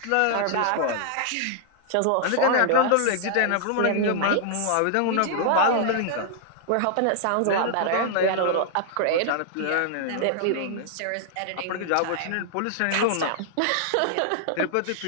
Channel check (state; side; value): different; both; correlation -0.01